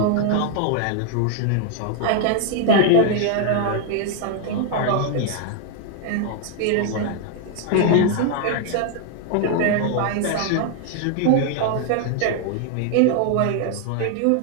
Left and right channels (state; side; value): different; both; correlation 0.00